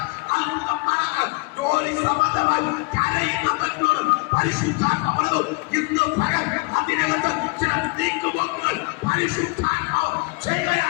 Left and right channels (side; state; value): right; quieter; 28.5 dB